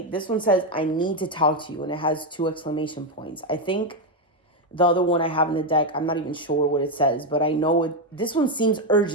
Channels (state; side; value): normal; both; correlation 0.05